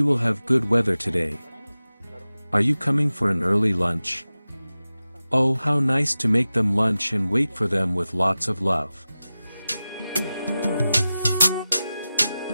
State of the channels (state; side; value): inverted; both; correlation -0.95